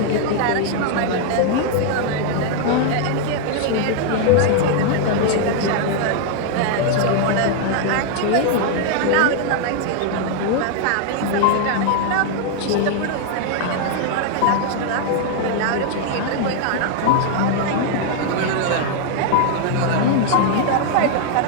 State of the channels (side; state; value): both; different; correlation 0.00